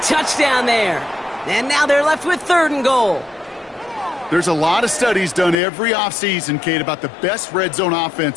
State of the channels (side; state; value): right; drops out; at 5.6 s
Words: there. And now they're left with third and goal. There's a lot of studies done every offseason, Kate, about the best red zone